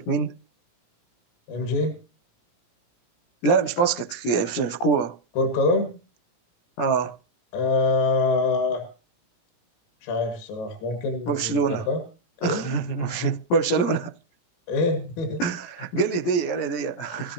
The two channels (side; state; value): right; late; 17 ms